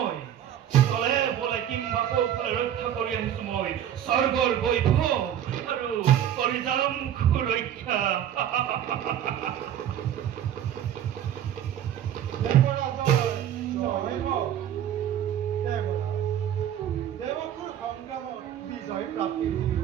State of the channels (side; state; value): left; quieter; 10.4 dB